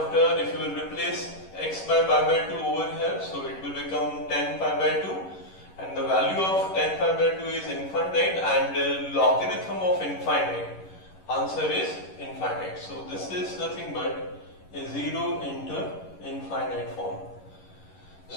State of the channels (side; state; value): right; late; 11 ms